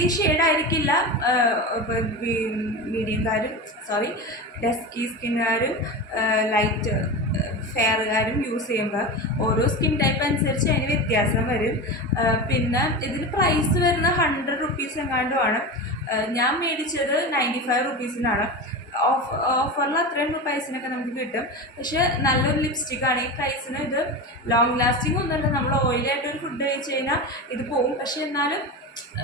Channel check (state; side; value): normal; both; correlation 0.24